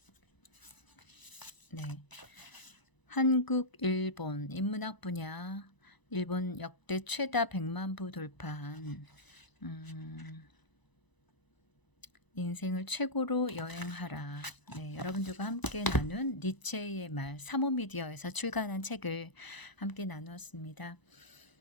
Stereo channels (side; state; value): right; late; 1.0 ms